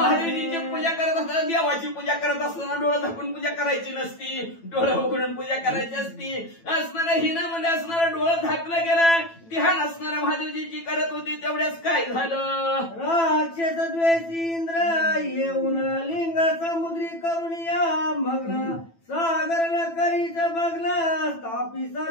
पूजा करत असताना देवाची पूजा करत असताना डोळं झाकून पूजा करायची नसती, डोळं उघडून पूजा करायची असती. असणाऱ्या हिनामध्ये असणारं डोळं झाकलं गेलं. ध्यान असणाऱ्या महादेवजीची करत होती. तेवढ्याच काय झालं. राक्षस द्वेषी इंद्र येऊन लिंग समुद्री करून या मग्न सागर न करीच भग्न स्थापी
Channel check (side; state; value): right; late; 9.0 ms